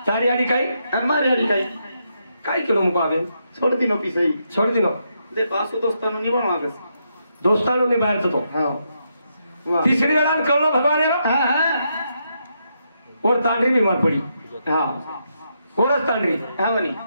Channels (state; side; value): inverted; both; correlation -0.80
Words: तारी आडी काय मार याडी काही काय केलो मुको आवे सोड दिनो पिसई छोड दिनो दे पासो दोस्तानो निवण मागस दोस्तानो ने बाहेरचं तो हा वा तिसरी वेळा कळलो भगवान हा हा और तांडरी बीमार पडी हा कोरच तांडरी हा म्हणे